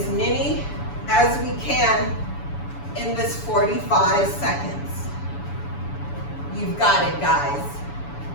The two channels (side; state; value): right; late; 7.0 ms